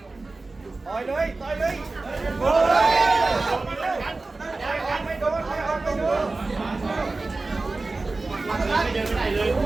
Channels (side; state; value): left; quieter; 3.4 dB